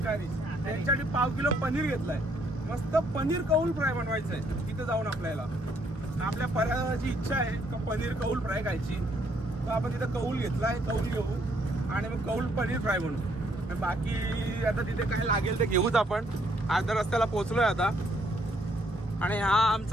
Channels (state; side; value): normal; both; correlation 0.69